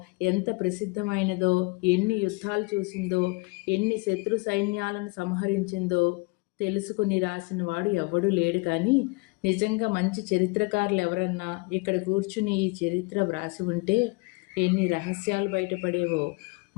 ఎంత ప్రసిద్ధమైనదో, ఎన్ని యుద్ధాలు చూసిందో, ఎన్ని శత్రు సైన్యాలను సంహరించిందో తెలుసుకుని రాసిన వాడు ఎవ్వడూ లేడు. కానీ నిజంగా మంచి చరిత్రకారులు ఎవరన్నా ఇక్కడ కూర్చుని ఈ చరిత్ర వ్రాసి ఉంటే ఎన్ని రహస్యాలు బయటపడేవో,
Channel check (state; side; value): quieter; right; 27.9 dB